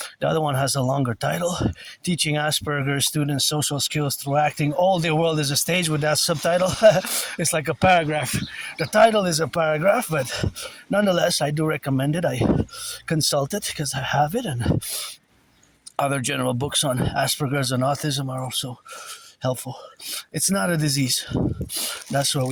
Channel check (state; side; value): identical; both; correlation 1.00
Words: The other one has a longer title, Teaching Asperger's Students Social Skills Through Acting. All their world is a stage, with that subtitle. It's like a paragraph. The title is a paragraph, but nonetheless, I do recommend it. I consult it because I have it, and other general books on Asperger's and autism are also helpful. It's not a disease. That's why